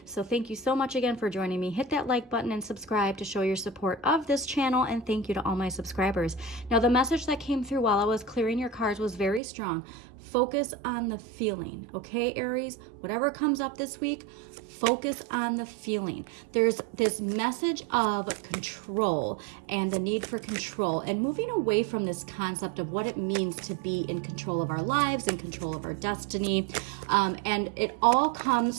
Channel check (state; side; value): drops out; left; at 9.4 s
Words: So thank you so much again for joining me. Hit that like button and subscribe to show your support of this channel, and thank you to all my subscribers. Now, the message that came through while I was clearing your cards was very strong. Focus on the feeling, okay, Aries? Whatever comes up this week, focus on the feeling. There's this message of control and the need for control and moving away from this concept of what it means to be in control of our lives, in control of our destiny. And it all